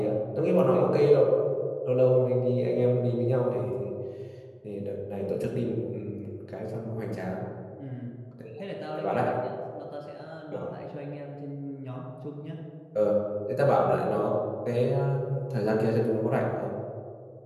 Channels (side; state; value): both; identical; correlation 1.00